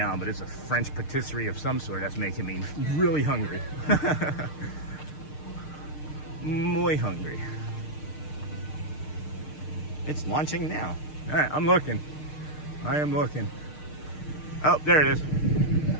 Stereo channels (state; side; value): late; right; 6.6 ms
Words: but it's a French patisserie of some sort that's making me really hungry. Muy hungry. It's launching now. All right, I'm looking. I am looking. Oh, there it is.